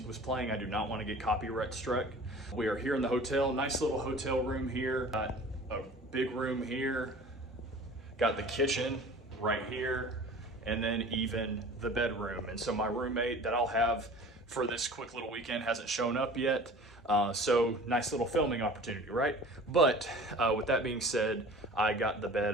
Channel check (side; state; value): both; normal; correlation 0.43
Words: was playing. I do not want to get copyright struck. We are here in the hotel. Nice little hotel room here. Got a big room here. Got the kitchen right here, and then even the bedroom. And so my roommate that I'll have for this quick little weekend hasn't shown up yet. So nice little filming opportunity, right? But with that being said, I got the bed